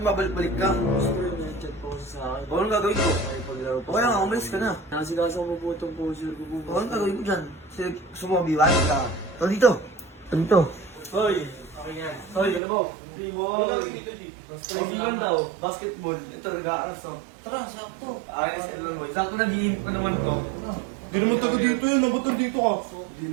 mabalik-balik ka. Chat po sa akin. Anong gagawin ko? Paglaro po. Okay lang, umalis ka na. Inasigas ako po itong poser ko po. Anong gagawin ko dyan? Gusto mo mabiwan ka. Ito dito. Ito dito. Hoy! Hoy, galabaw! Training lang daw, basketball. Ito, nag-aaras to. Tara, sakto. Ayos, ito mo. Sakto nag-iinip pa naman to. Hindi naman taga dito yun, ba't nandito ka? Hindi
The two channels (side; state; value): left; drops out; at 12.6 s